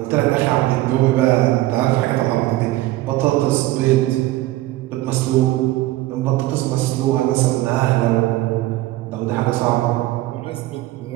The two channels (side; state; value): left; quieter; 17.0 dB